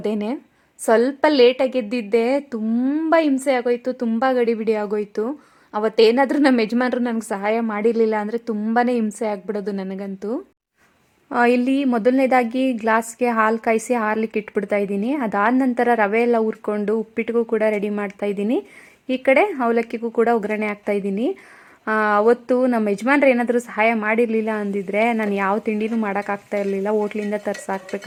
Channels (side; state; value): both; identical; correlation 1.00